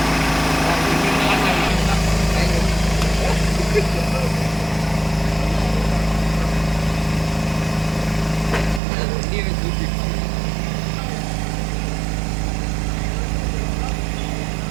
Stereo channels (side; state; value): left; drops out; at 8.8 s